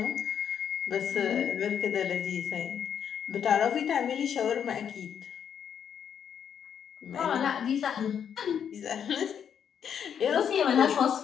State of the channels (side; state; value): right; quieter; 8.1 dB